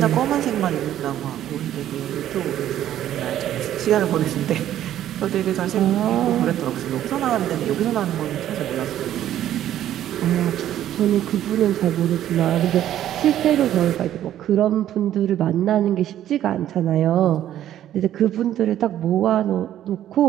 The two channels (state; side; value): quieter; left; 11.8 dB